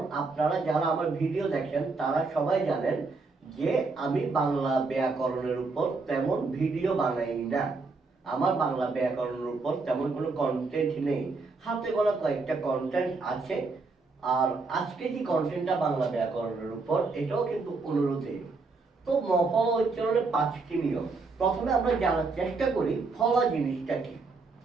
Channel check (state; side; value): quieter; left; 4.0 dB